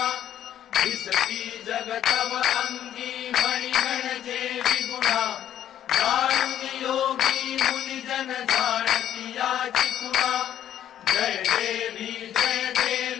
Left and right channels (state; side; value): quieter; right; 10.9 dB